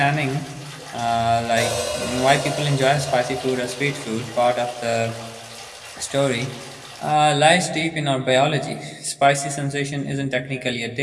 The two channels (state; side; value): identical; both; correlation 1.00